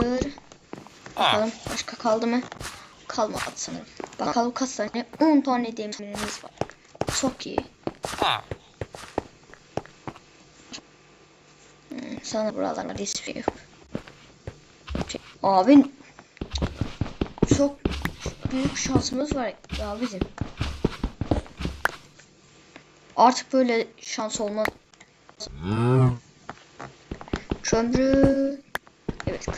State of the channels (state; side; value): identical; both; correlation 1.00